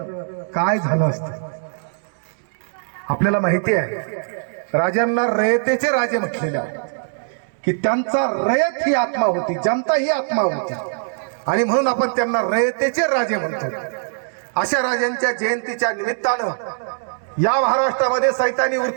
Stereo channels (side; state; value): left; silent; 65 dB below the other